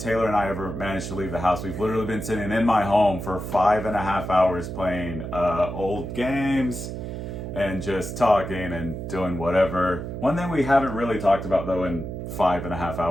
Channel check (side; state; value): right; noise; hum, 6 dB below the sound